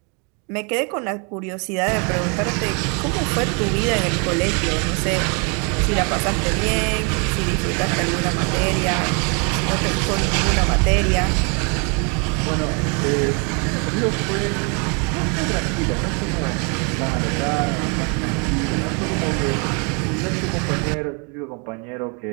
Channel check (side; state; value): left; quieter; 35.1 dB